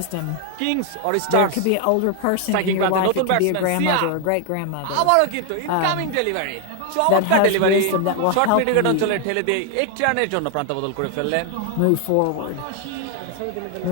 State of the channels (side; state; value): both; different; correlation 0.00